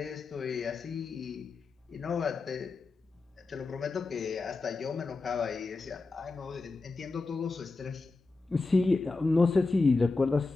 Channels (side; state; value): right; quieter; 3.7 dB